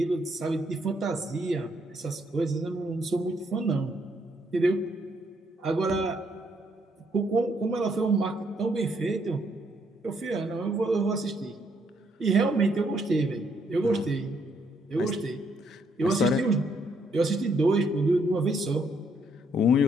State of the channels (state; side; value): normal; both; correlation 0.72